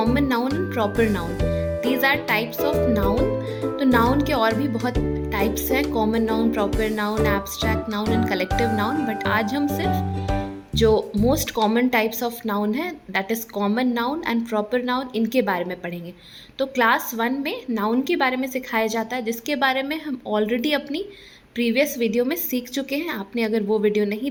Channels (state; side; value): identical; both; correlation 1.00